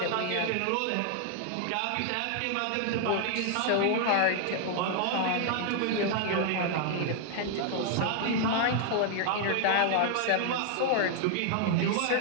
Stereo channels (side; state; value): both; different; correlation 0.00